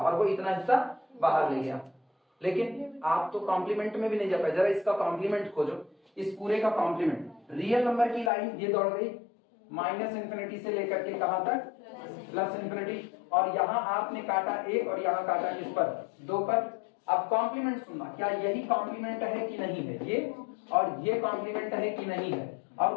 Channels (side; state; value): right; drops out; at 8.3 s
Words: वो इतना हिस्सा बाहर ले गया। लेकिन आप तो कॉम्प्लीमेंट में भी नहीं जा पाए। जरा इसका कॉम्प्लीमेंट खोजो, इस पूरे का कॉम्प्लीमेंट। रियल नंबर की लाइन ये दौड़ गई माइनस इंफिनिटी से लेकर के कहां तक, प्लस इंफिनिटी, और यहाँ आपने काटा 1 और यहाँ काटा किस पर, 2 पर। अब कॉम्प्लीमेंट सुनना, क्या यही कॉम्प्लीमेंट है कि नहीं है, ये और ये कॉम्प्लीमेंट है कि नहीं है। और